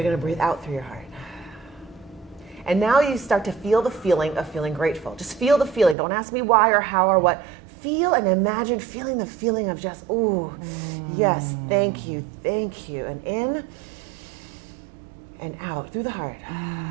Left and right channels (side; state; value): left; drops out; at 6.0 s